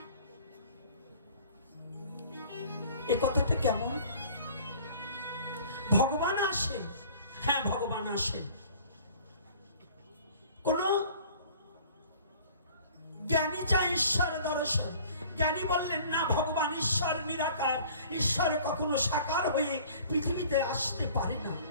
এ কথাটা কেমন? ভগবান আসেন, হ্যাঁ ভগবান আসেন। কোন জ্ঞানী চায় ঈশ্বর দর্শন, জ্ঞানী বললেন না ভগবান ঈশ্বর নিরাকার, ঈশ্বর কখনো সাকার হয়ে পৃথিবীতে আসতে পারে না,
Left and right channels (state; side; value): inverted; both; correlation -0.49